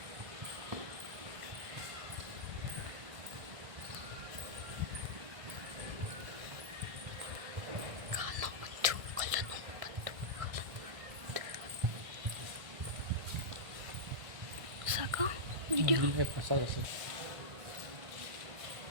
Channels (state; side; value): late; left; 1.5 ms